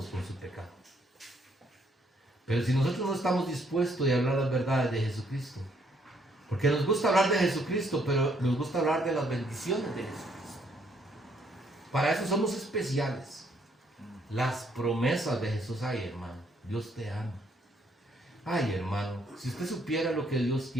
con su pecado. Pero si nosotros no estamos dispuestos a hablar las verdades de Jesucristo, porque nos gusta hablar de Jesucristo, pero nos gusta hablar de las bendiciones de Jesucristo. Para eso somos especiales. Las promesas de Jesús, ay hermano, Dios te ama. Ay hermano, si usted supiera lo que Dios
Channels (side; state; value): both; normal; correlation 0.69